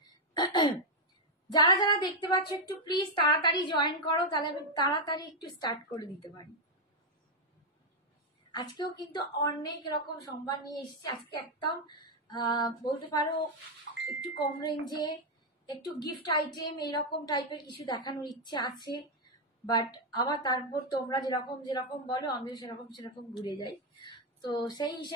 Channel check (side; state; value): both; normal; correlation 0.01